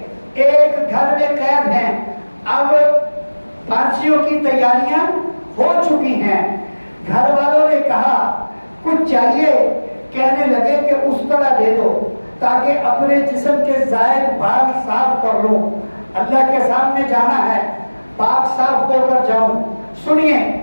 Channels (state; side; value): inverted; both; correlation -1.00